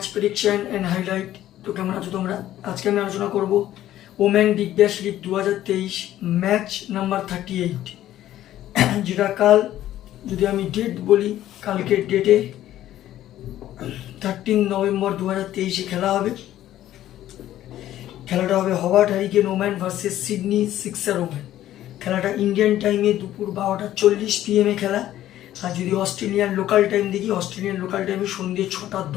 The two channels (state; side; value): quieter; right; 13.1 dB